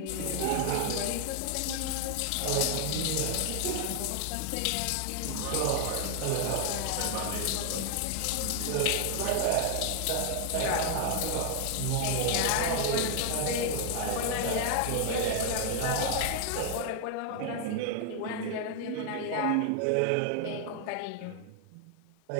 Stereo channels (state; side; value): different; both; correlation 0.00